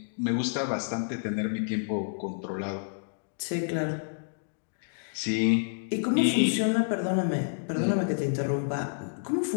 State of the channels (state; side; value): silent; right; digital silence